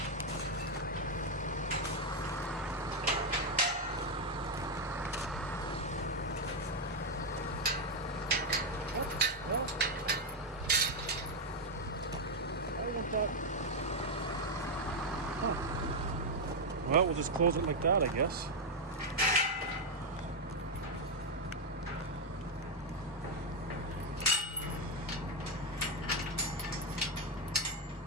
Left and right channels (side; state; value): both; normal; correlation 0.02